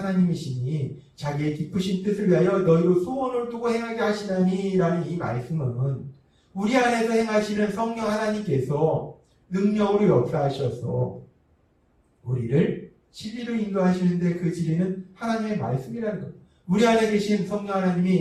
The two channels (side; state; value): both; identical; correlation 1.00